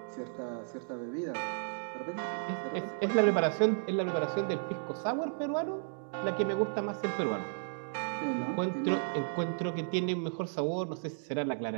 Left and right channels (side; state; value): left; silent; digital silence